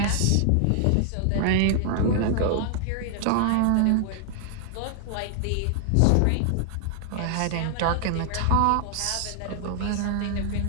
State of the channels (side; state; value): both; different; correlation 0.00